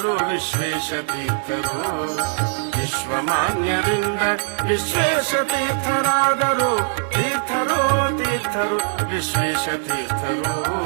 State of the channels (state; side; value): silent; left; digital silence